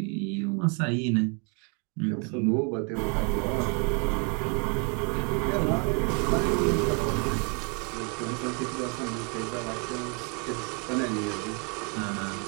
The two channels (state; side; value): quieter; left; 35.6 dB